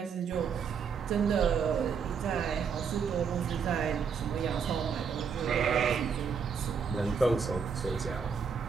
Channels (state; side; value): quieter; left; 6.3 dB